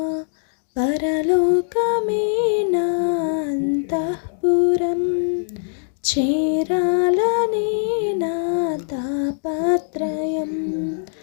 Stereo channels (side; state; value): right; silent; digital silence